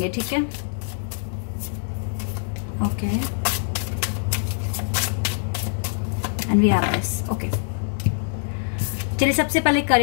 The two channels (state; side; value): silent; right; digital silence